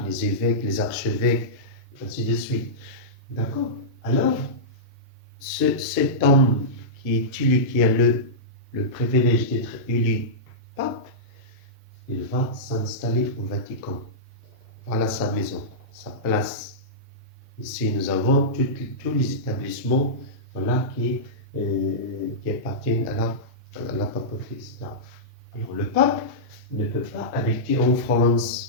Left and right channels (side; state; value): both; normal; correlation -0.13